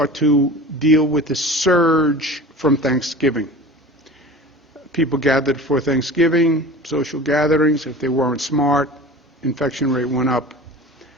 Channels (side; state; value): both; normal; correlation 0.38